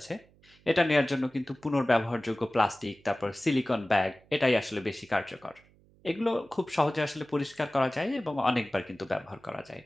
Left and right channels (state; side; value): noise; right; hum, 30 dB below the sound